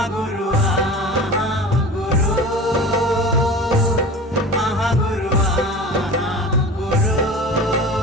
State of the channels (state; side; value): normal; both; correlation 0.36